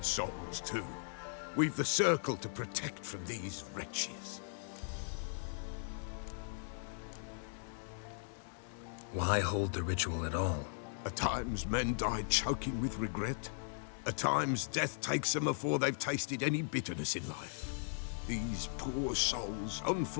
souls too. We've the circle to protect from these wretches. Why hold the ritual at all? At times men die choking with regret. At times death takes them before they've tasted any bitterness in life. These poor souls,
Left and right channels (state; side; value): silent; right; 52 dB below the other